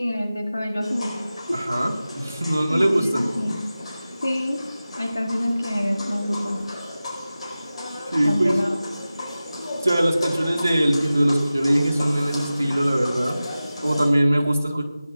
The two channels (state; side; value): inverted; both; correlation -0.95